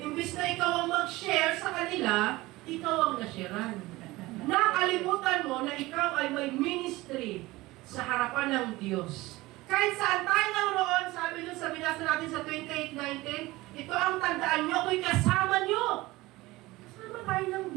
Imbis na ikaw ang mag-share sa kanila, ikaw ang nasharean. Nakalimutan mo na ikaw ay may ministry sa harapan ng Diyos. Kahit saan tayo naroon, sabi nyo, sabi nasa natin sa 28:19, ito ang tandaan nyo, ako'y kasama nyo. Kasama tayo ng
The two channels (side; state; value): left; quieter; 19.7 dB